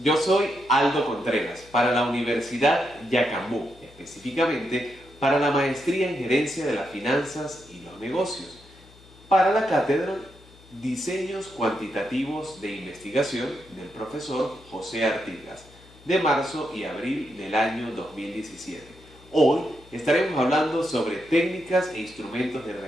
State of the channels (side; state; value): left; noise; hum, 24 dB below the sound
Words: yo soy Aldo Contreras para la Universidad Yacambú, específicamente para la Maestría en Gerencia de las Finanzas y los Negocios, para la cátedra Diseños Cuantitativos de Investigación del profesor José Artigas, de marzo y abril del año 2017. Hoy estaremos hablando sobre técnicas e instrumentos de